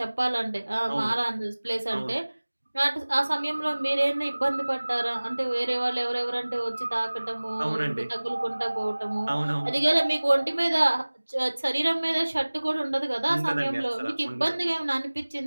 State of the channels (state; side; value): inverted; both; correlation -1.00